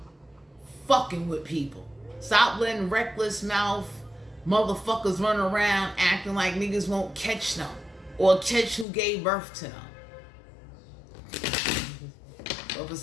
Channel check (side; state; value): right; drops out; at 8.8 s